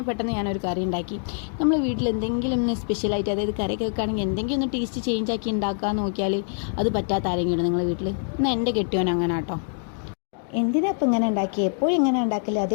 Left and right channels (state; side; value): silent; right; digital silence